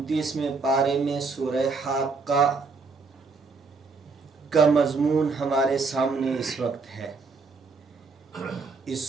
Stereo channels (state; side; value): quieter; left; 4.5 dB